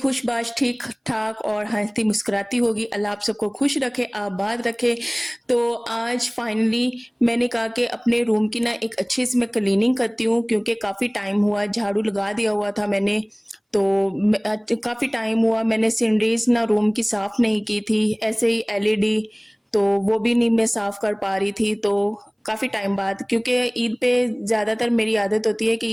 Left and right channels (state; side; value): identical; both; correlation 1.00